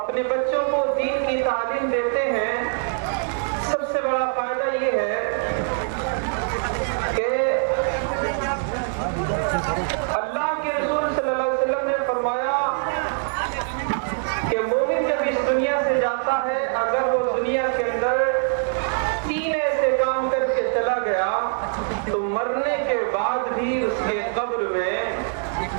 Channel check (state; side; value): silent; left; 63 dB below the other